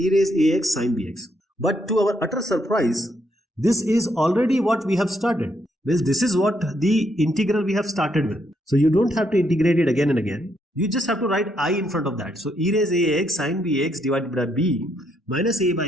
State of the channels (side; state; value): both; normal; correlation 0.75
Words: raise ax sin bx. But to our utter surprise, this is already what we have started. Well, this is what the integral we have started with. So you don't have to integrate it again and again. You just have to write I in front of that. So e raised ax sin bx divided by b minus a